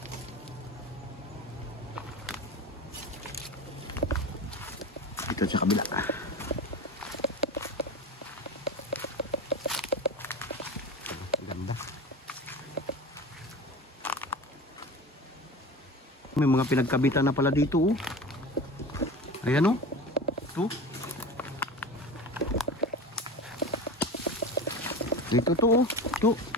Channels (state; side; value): normal; both; correlation 0.32